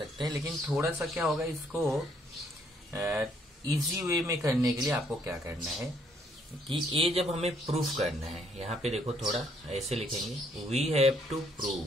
हैं, लेकिन थोड़ा सा क्या होगा, इसको इजी वे में करने के लिए आपको क्या करना है कि ये जब हमें प्रूफ करना है, यहाँ पे देखो थोड़ा ऐसे लिखेंगे, वी हैव टू प्रूव,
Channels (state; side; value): normal; both; correlation 0.68